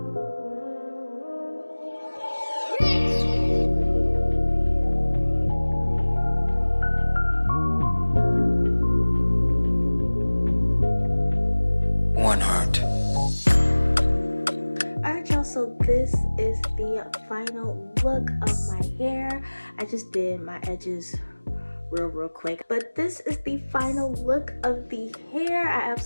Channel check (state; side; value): inverted; both; correlation -1.00